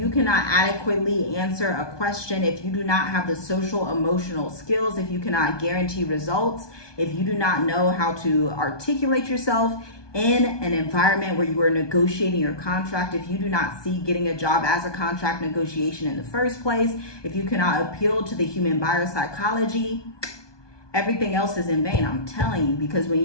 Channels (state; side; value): late; right; 1.2 ms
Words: cannot adequately answer a question, if you do not have the social emotional skills, if you cannot guarantee results, if you do not know how to articulate yourself in an environment where you are negotiating your contract, if you do not see getting a job as a contract negotiation in the first place, if you cannot appeal to the human buyer psychology, everything else is in vain. I'm telling you, because when